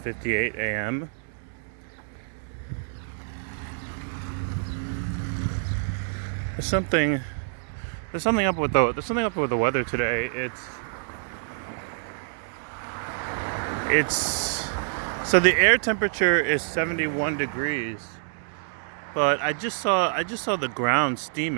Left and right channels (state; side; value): silent; left; digital silence